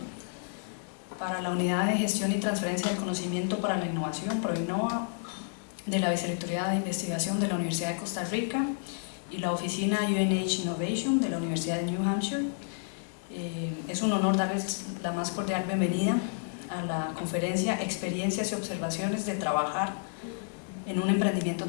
Para la Unidad de Gestión y Transferencia del Conocimiento para la Innovación, ProInnova, de la Vicerrectoría de Investigación de la Universidad de Costa Rica y la oficina UNHInnovation de la Universidad de New Hampshire, es un honor darles la más cordial bienvenida a la conferencia Experiencias y Observaciones de Trabajar en un Emprendimiento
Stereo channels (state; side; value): silent; right; digital silence